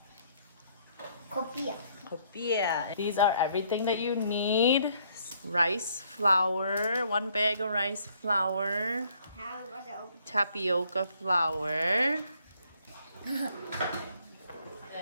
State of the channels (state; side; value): inverted; both; correlation -0.66